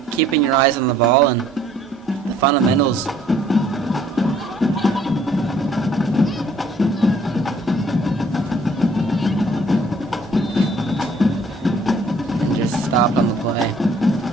keeping your eyes on the ball and the fundamentals. And just stop on the play.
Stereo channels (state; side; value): normal; both; correlation 0.60